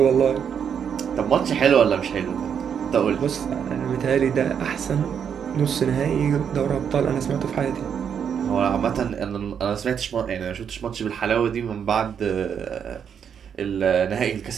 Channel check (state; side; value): quieter; left; 7.7 dB